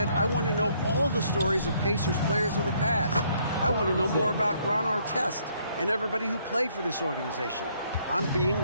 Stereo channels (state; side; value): inverted; both; correlation -0.68